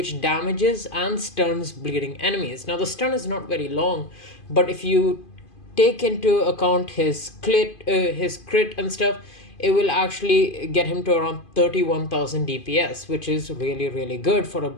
damages and stuns bleeding enemies. Now the stun is not very long, but if you take into account his crit and stuff, it will actually get him to around 31,000 DPS, which is really good for a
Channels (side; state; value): right; late; 2.5 ms